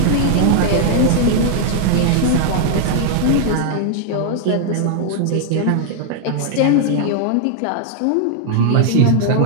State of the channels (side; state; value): both; different; correlation 0.00